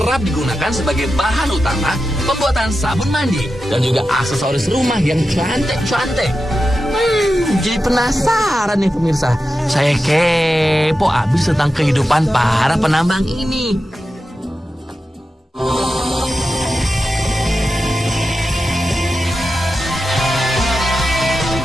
digunakan sebagai bahan utama pembuatan sabun mandi dan juga aksesoris rumah yang cantik-cantik. Jadi penasaran nih pemirsa. Saya kepo abis tentang kehidupan para penambang ini.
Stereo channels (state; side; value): normal; both; correlation 0.91